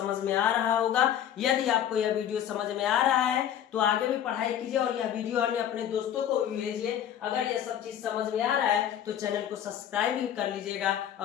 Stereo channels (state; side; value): quieter; right; 10.1 dB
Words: में आ रहा होगा। यदि आपको यह वीडियो समझ में आ रहा है तो आगे भी पढ़ाई कीजिए और यह वीडियो अन्य अपने दोस्तों को भी भेजिए। अगर यह सब चीज समझ में आ रहा है तो चैनल को सब्सक्राइब भी कर लीजिएगा